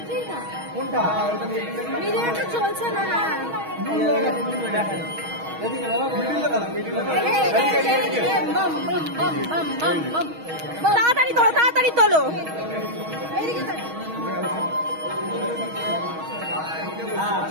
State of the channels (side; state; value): left; late; 6.3 ms